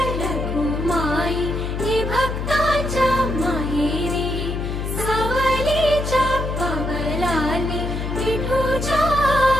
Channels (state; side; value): noise; left; hum, 3 dB below the sound